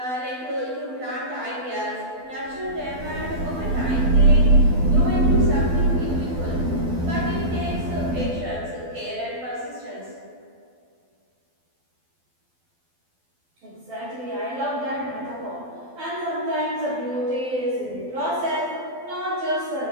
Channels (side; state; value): left; late; 12 ms